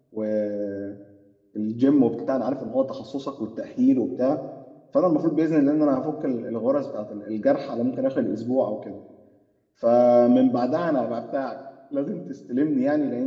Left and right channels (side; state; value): both; identical; correlation 1.00